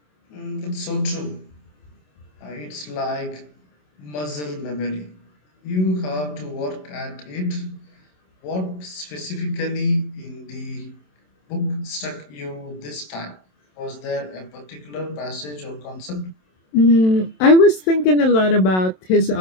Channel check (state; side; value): late; right; 27 ms